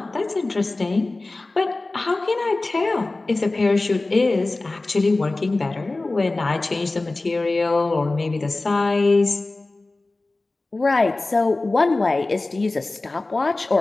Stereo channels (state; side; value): quieter; right; 3.1 dB